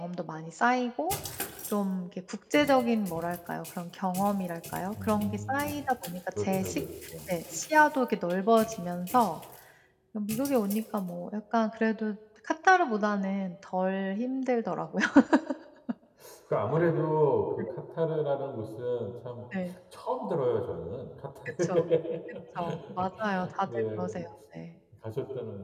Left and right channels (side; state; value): both; identical; correlation 1.00